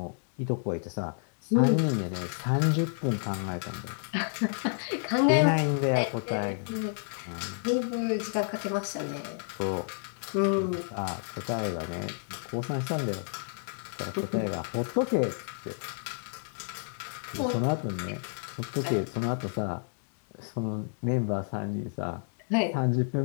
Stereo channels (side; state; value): right; silent; digital silence